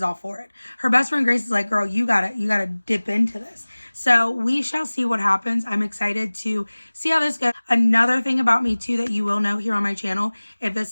all for it. Her best friend Grace is like, girl, you gotta dip into this. So we shall see what happens. I'm excited to see how this goes. Another thing about me too that you will know here on my channel, if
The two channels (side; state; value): both; inverted; correlation -1.00